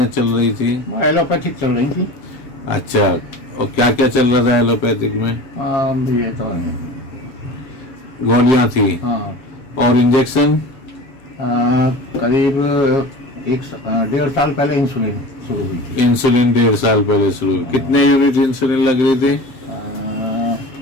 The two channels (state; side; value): late; right; 7.8 ms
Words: चल रही थी? एलोपैथिक चल रही थी। अच्छा, और क्या क्या चल रहा था एलोपैथिक में? ये तो गोलियां थी? हाँ। और इंजेक्शन? करीब 1.5 साल पहले इंसुलिन शुरू हुई थी। इंसुलिन 1.5 साल पहले शुरू हुई। कितने यूनिट इंसुलिन लग रही थी?